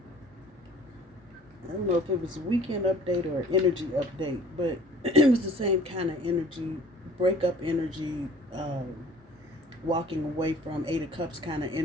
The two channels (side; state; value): both; normal; correlation 0.50